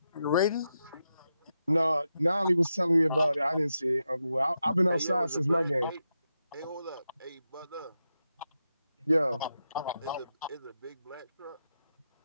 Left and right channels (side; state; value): both; inverted; correlation -0.87